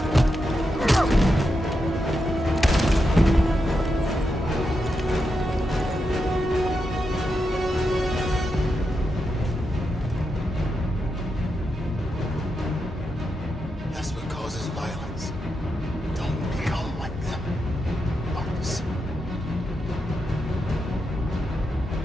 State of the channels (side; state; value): both; normal; correlation 0.86